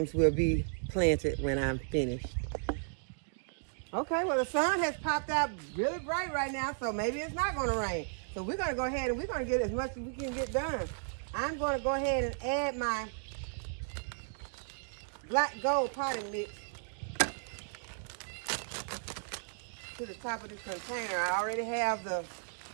will be planted when I'm finished. Okay, well the sun has popped out really bright right now, so maybe it's not going to rain. So we're going to go ahead and we're going to get as much as we can get done. I'm going to go ahead and add my black gold potting mix to the top of this container. I already have the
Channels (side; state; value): left; silent; digital silence